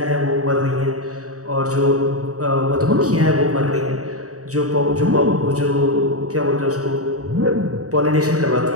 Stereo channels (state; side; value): late; left; 0.66 ms